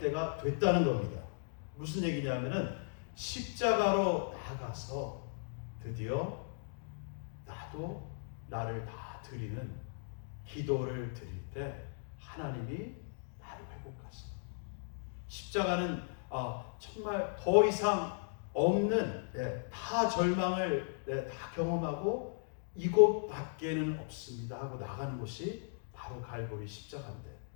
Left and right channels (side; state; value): right; silent; digital silence